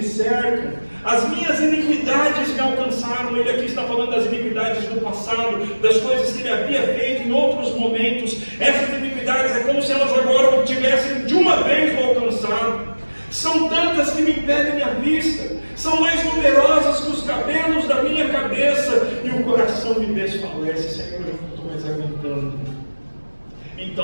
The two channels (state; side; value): inverted; both; correlation -1.00